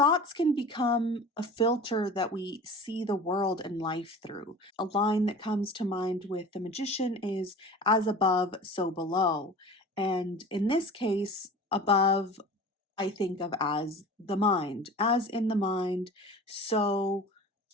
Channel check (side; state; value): both; normal; correlation 0.38